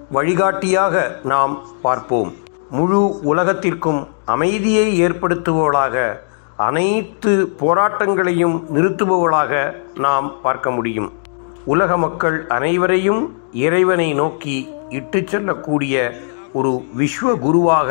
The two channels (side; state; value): right; silent; digital silence